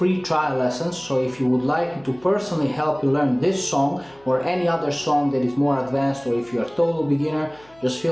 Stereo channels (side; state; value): left; noise; hum, 29 dB below the sound